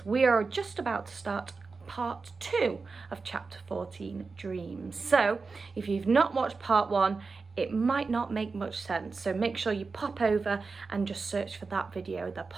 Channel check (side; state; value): left; quieter; 4.4 dB